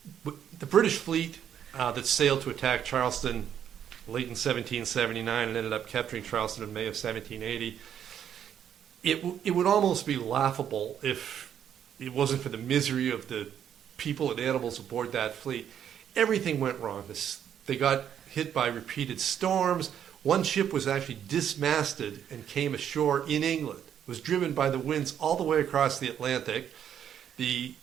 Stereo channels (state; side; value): quieter; left; 9.3 dB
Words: British fleet that sailed to attack Charleston late in 1779 and ended up capturing Charleston in May of 1780, it would almost be laughable if it wasn't for the misery of the people and animals aboard that fleet. Everything went wrong. They got hit by repeated storms. One ship was actually dismasted and came ashore in England. It was driven by the winds all the way across the Atlantic. The